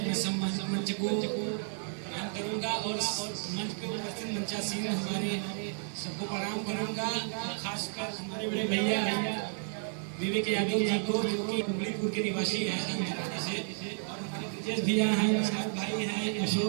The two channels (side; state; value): left; silent; 56 dB below the other